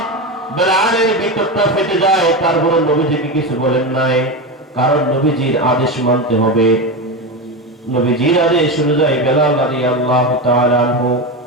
বেলালের ভিতরটা ফেটে যায়, তারপর নবীজিকে কিছু বলেন নাই। কারণ নবীজির আদেশ মানতে হবে। নবীজির আদেশ অনুযায়ী বেলাল রাদিয়াল্লাহু তাআলা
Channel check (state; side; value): normal; both; correlation 0.18